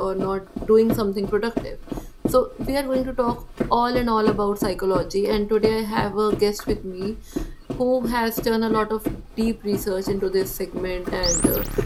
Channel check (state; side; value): identical; both; correlation 1.00